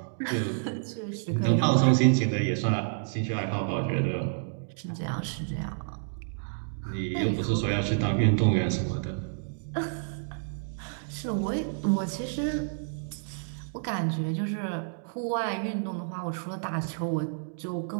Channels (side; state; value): left; silent; digital silence